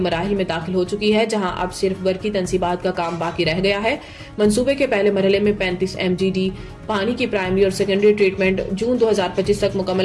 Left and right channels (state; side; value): identical; both; correlation 1.00